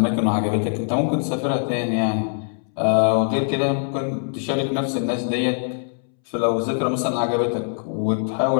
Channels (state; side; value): silent; right; 64 dB below the other